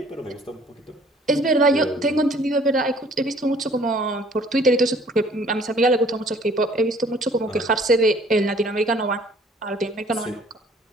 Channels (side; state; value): both; normal; correlation 0.56